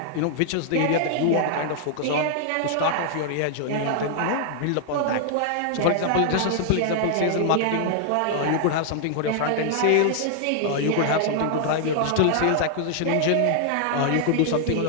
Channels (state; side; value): different; both; correlation -0.01